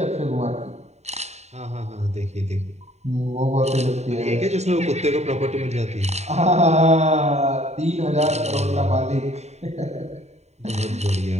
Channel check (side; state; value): left; late; 0.32 ms